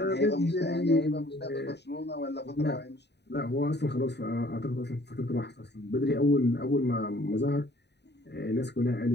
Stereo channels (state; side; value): late; right; 0.50 ms